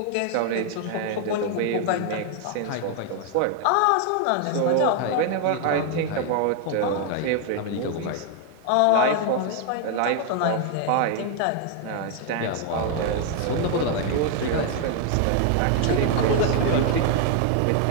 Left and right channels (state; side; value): different; both; correlation 0.00